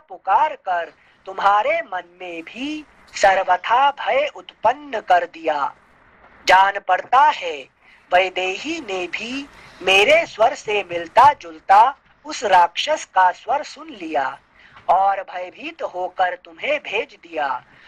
कर तुम्हारे मन में भी सर्वथा भय उत्पन्न कर दिया। जान पड़ता है वैदेही ने भी मेरे स्वर से मिलता जुलता उस राक्षस का स्वर सुन लिया और भयभीत होकर तुम्हें भेज दिया,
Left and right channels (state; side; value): identical; both; correlation 1.00